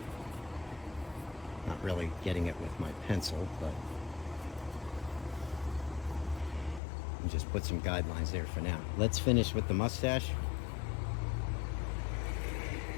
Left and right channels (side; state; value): right; drops out; at 6.8 s